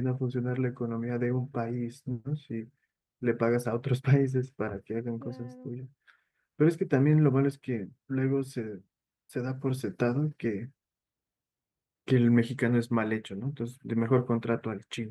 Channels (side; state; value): both; identical; correlation 1.00